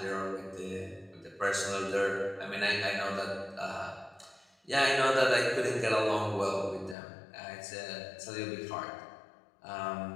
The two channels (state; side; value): drops out; right; at 7.0 s